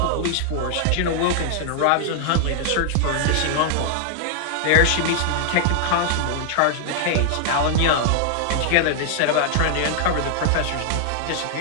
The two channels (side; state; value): both; different; correlation 0.00